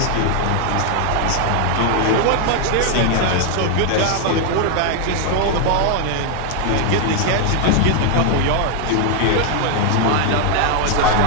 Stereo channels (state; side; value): different; both; correlation 0.00